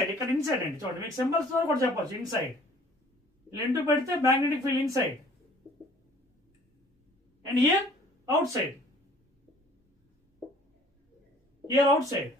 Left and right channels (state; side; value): normal; both; correlation 0.53